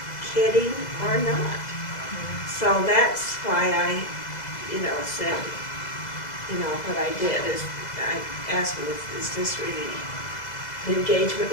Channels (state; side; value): late; right; 2.0 ms